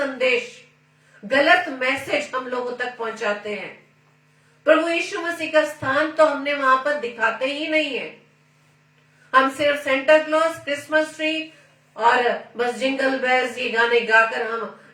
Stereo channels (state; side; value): identical; both; correlation 1.00